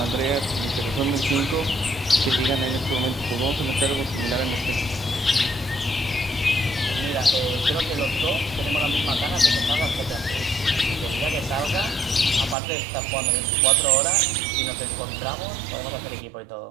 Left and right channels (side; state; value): left; drops out; at 12.6 s